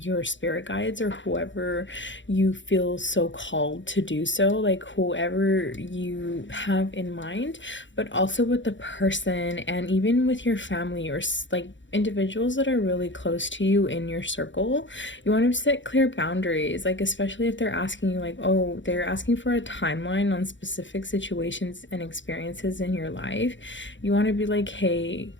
spirit guides or whoever you feel so called to do so, like whoever you have in mind, but also with the person and even with your family or like individuals that are really close to you in your circle. You want to set clear boundaries, like especially if they're asking you like, oh, they're asking for a timeline on specific situations and experiences in your life. You want to be like, hey,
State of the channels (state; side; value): late; right; 0.54 ms